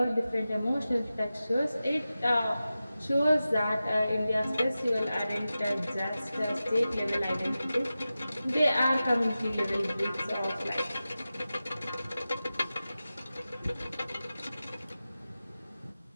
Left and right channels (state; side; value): inverted; both; correlation -0.94